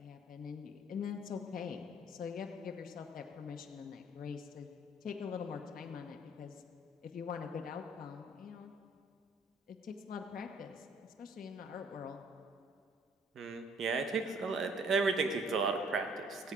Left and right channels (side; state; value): both; normal; correlation 0.59